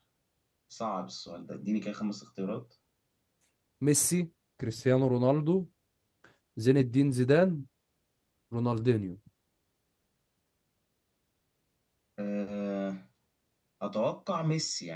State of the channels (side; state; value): both; identical; correlation 1.00